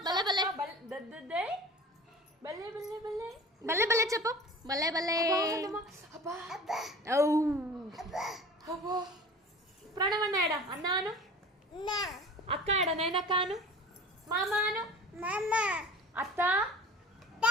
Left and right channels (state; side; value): normal; both; correlation 0.41